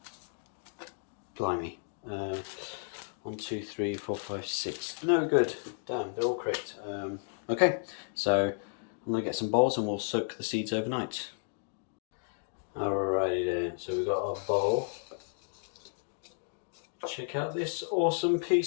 Blimey. 1, 2, 3, 4, 5, 6. No good. Damn, they're all correct. Okay, so I'm going to get some bowls and we'll soak the seeds overnight. Alrighty then, so we've got our bowl. Check out this awesome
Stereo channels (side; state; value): right; silent; digital silence